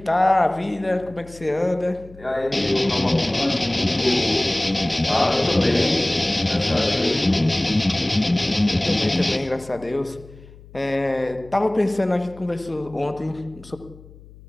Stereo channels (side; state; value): left; noise; hum, 21 dB below the sound